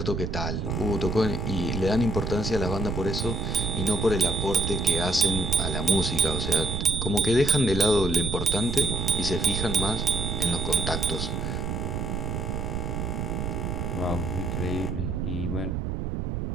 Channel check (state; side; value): noise; right; rumble, 2 dB below the sound